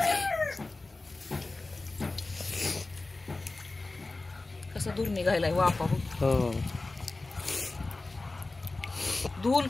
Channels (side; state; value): right; quieter; 3.3 dB